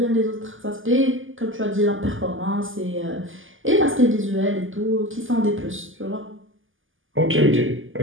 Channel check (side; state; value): left; late; 0.58 ms